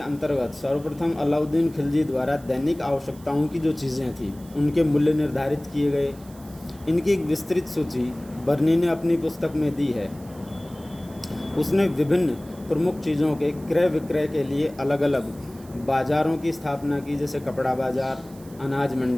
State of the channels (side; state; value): right; noise; hiss, 24 dB below the sound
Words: सर्वप्रथम अलाउद्दीन खिलजी द्वारा दैनिक आवश्यकताओं की जो चीज़ें थी उनके मूल्य निर्धारित किए गए। इनकी एक विस्तृत सूची बर्नी ने अपनी पुस्तक में दी है। उसने विभिन्न प्रमुख चीज़ों के क्रय विक्रय के लिए अलग अलग बाज़ारों की स्थापना की, जैसे कपड़ा बाज़ार, अनाज